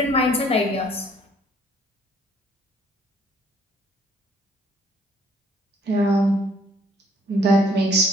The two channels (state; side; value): normal; both; correlation 0.62